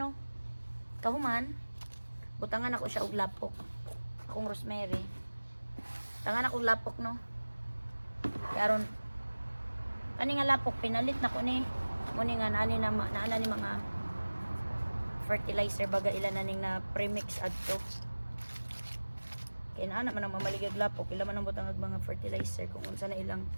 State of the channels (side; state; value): both; inverted; correlation -1.00